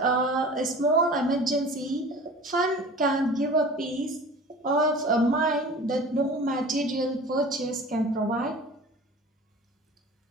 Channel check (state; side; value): normal; both; correlation 0.40